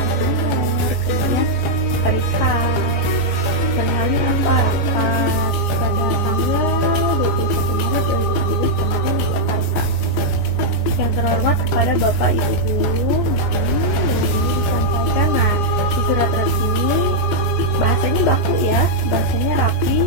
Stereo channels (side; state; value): right; late; 15 ms